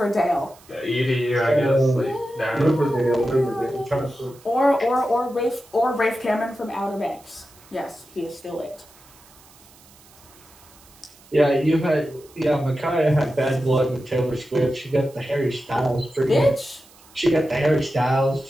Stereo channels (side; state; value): right; noise; hiss, 26 dB below the sound